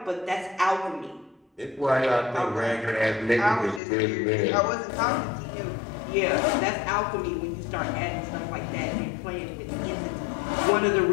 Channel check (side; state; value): right; drops out; at 3.8 s